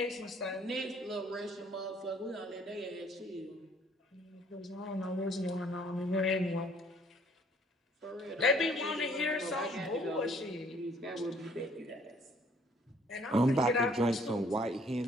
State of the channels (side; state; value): both; normal; correlation 0.61